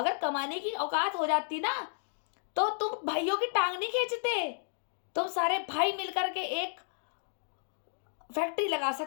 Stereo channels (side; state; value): right; silent; digital silence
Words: कमाने की औकात हो जाती ना, तो तुम भाइयों की टांग नहीं खींचते। तुम सारे भाई मिलकर के एक फैक्ट्री लगा